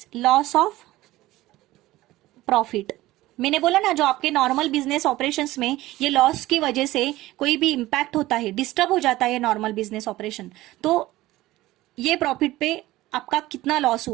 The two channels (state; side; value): quieter; left; 17.2 dB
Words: loss of profit. मैंने बोला ना, जो आपके नॉर्मल बिजनेस ऑपरेशंस में ये लॉस की वजह से कोई भी इंपैक्ट होता है, डिस्टर्ब हो जाता है नॉर्मल बिजनेस ऑपरेशन, तो ये प्रॉफिट पे आपका कितना लॉस